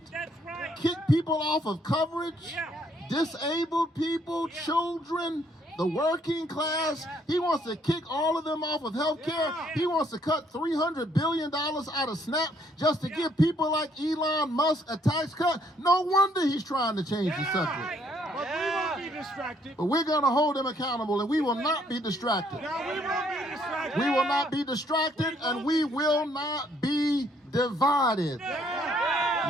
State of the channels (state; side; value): normal; both; correlation 0.67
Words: That's right. kick people off of coverage, Yeah. disabled people, children, the working class. He wants to kick all of them off of health care. He wants to cut $300 billion out of SNAP just to give people like Elon Musk a tax cut. No wonder he's trying to change the subject. But we won't be distracted. But we're going to hold him accountable, and we will not be distracted. No, we won't be distracted. We will not be distracted, and we will not be divided.